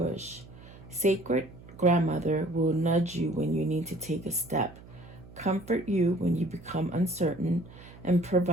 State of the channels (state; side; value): noise; right; hum, 19 dB below the sound